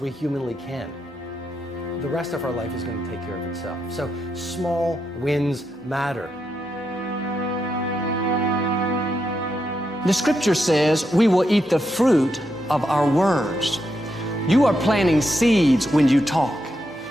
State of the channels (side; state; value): left; noise; hum, 28 dB below the sound